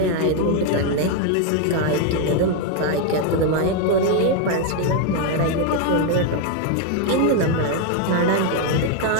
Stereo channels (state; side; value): different; both; correlation 0.01